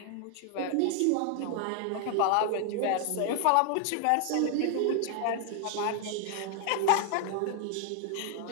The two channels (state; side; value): different; both; correlation 0.00